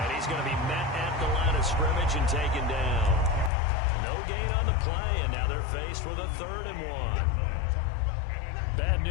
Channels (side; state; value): right; drops out; at 3.5 s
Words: he's going to be met at the line of scrimmage and taken down. No gain on the play, and now they're faced with a 3rd and 1. Bad